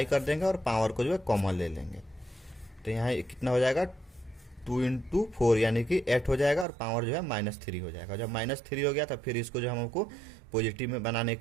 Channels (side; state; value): left; drops out; at 6.7 s